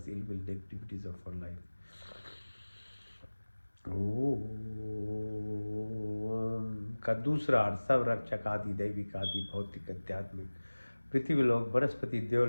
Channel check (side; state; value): both; inverted; correlation -1.00